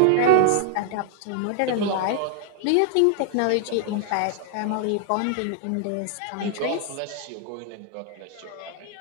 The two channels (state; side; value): different; both; correlation 0.00